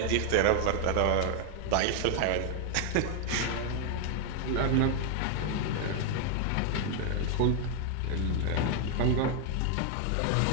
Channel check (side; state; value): both; different; correlation 0.00